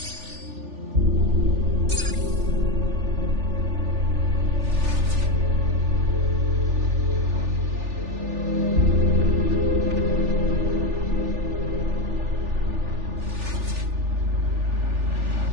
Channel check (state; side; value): late; left; 3.4 ms